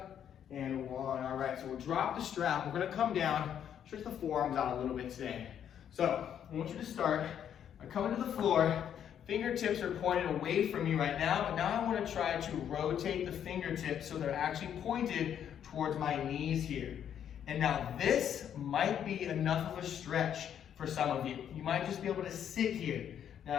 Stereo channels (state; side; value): quieter; right; 9.3 dB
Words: and 1. All right, so we'll drop the strap. We're gonna come down, stretch the forearms out a little bit today. So I want you to start by coming to the floor. Fingertips are pointed away from you right now, but now I want to try to rotate the fingertips so they're actually pointed towards my knees here. And now this might be enough of a stretch for some of you. You might just be able to sit here.